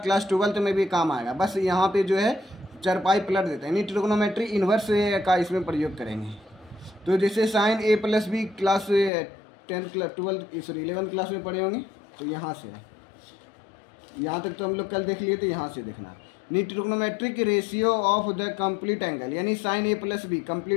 12th में भी काम आएगा, बस यहाँ पे जो है चरपाई पलट देते हैं, यानी ट्रिग्नोमेट्री इन्वर्स का इसमें प्रयोग करेंगे। तो जैसे sine A plus B class 10th class 11th class में पढ़े होंगे, तो यहाँ से है, यहाँ तक तो हम लोग कल देख लिए, तो यहाँ से देखना। Trigonometric ratio of the complete angle, यानी sign A plus B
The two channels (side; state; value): right; drops out; at 9.1 s